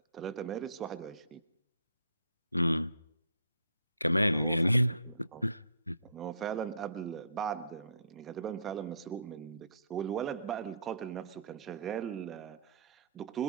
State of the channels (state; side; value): inverted; both; correlation -0.61